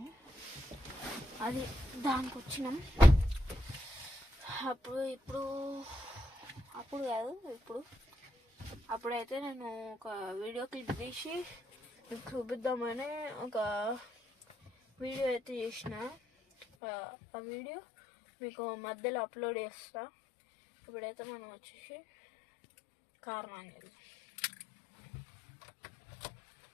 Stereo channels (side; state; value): right; drops out; at 16.7 s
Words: అది దానికి వచ్చినాం. అప్పుడైతే నేను ఒక వీడియో క్లిప్ తీసి మీకు చూపిద్దామని ఒక వీడియో అయితే చేసిన. ఆ వీడియో మీకు మధ్యలో అప్లోడ్ చేస్తా. ఇప్పుడైతే మనం వచ్చేసి కార్ ఆన్ చేద్దాం.